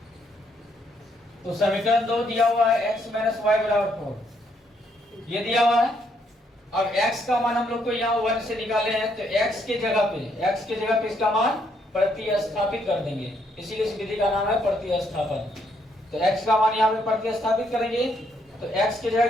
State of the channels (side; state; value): both; normal; correlation 0.72